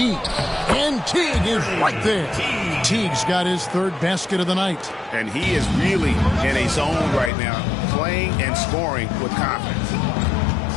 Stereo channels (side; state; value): right; drops out; at 7.3 s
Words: and Teague is right there. Teague's got his third basket of the night. And he is really in a zone right now, playing and scoring with confidence.